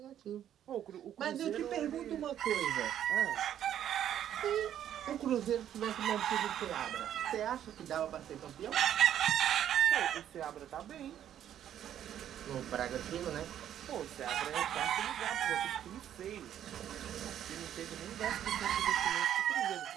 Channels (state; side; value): quieter; left; 10.5 dB